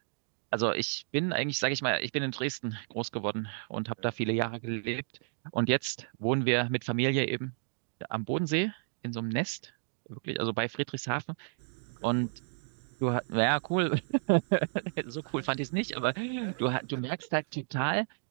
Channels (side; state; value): left; silent; digital silence